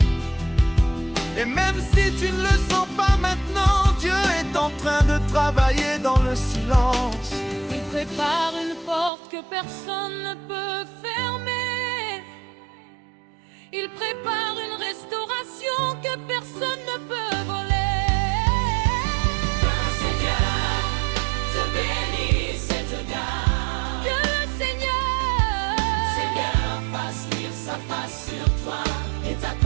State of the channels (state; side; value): drops out; left; at 9.1 s